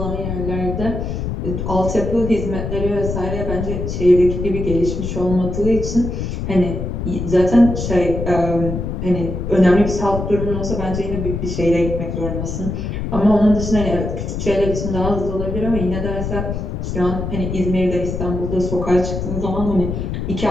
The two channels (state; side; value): noise; left; rumble, 4 dB below the sound